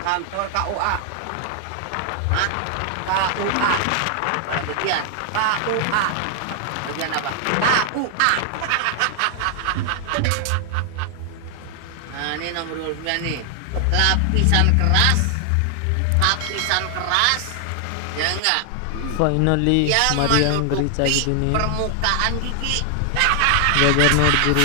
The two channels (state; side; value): different; both; correlation 0.00